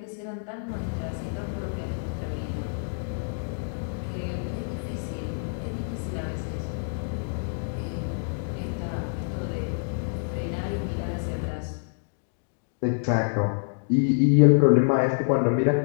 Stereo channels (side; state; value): right; silent; digital silence